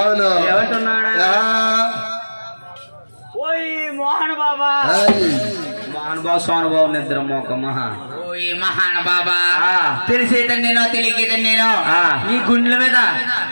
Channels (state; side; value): inverted; both; correlation -1.00